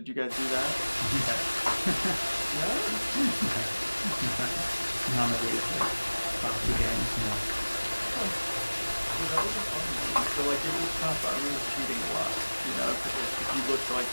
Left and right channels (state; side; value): inverted; both; correlation -1.00